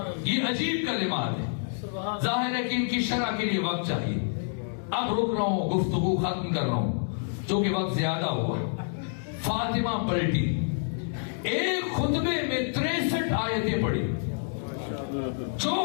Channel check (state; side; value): silent; right; digital silence